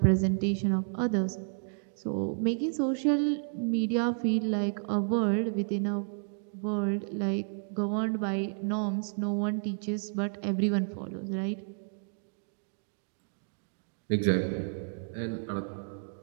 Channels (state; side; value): silent; left; digital silence